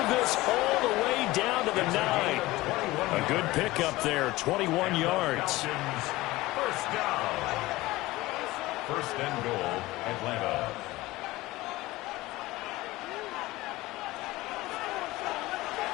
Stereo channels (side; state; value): right; quieter; 19.0 dB